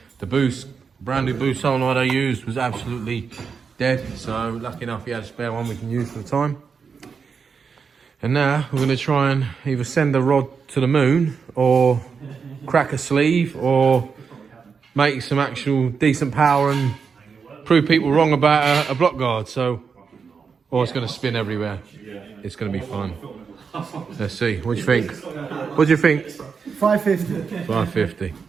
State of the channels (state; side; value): quieter; left; 5.8 dB